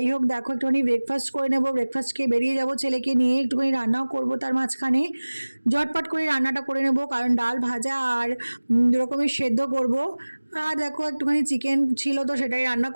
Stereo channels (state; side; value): inverted; both; correlation -1.00